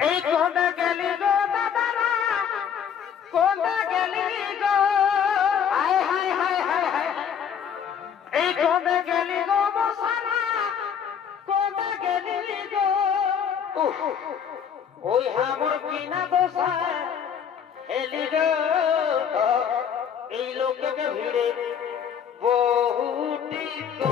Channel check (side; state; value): right; quieter; 7.9 dB